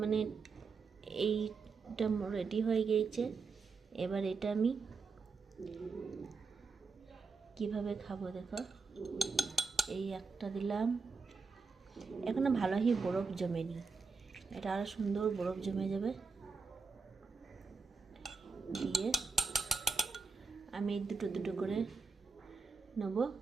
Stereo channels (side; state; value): left; quieter; 4.7 dB